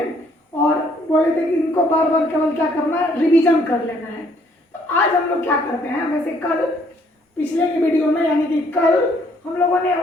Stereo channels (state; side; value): normal; both; correlation 0.65